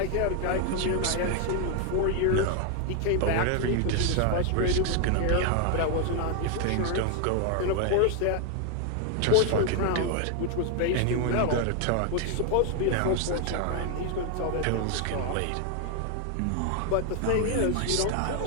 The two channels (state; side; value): different; both; correlation 0.00